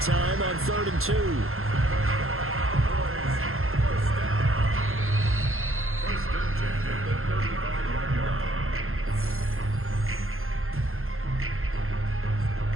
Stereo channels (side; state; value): left; late; 0.61 ms